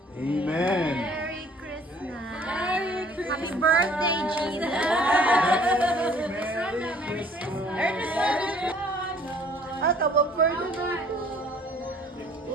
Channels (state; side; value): normal; both; correlation 0.56